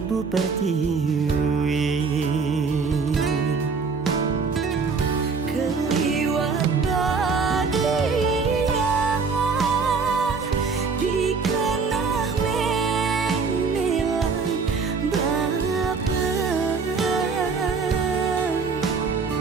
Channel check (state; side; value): quieter; left; 4.9 dB